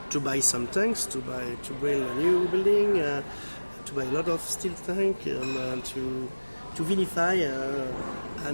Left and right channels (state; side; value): inverted; both; correlation -1.00